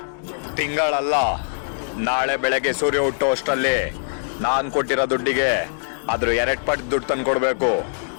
ತಿಂಗಳಲ್ಲ, ನಾಳೆ ಬೆಳಗ್ಗೆ ಸೂರ್ಯ ಹುಟ್ಟೋ ಅಷ್ಟರಲ್ಲಿ ನಾನ್ ಕೊಟ್ಟಿರೋ ದುಡ್ಡಿಗೆ ಅದ್ರ 2 ಪಟ್ಟು ದುಡ್ಡು ತಂದು ಕೊಡ್ಬೇಕು.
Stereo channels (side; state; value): right; silent; digital silence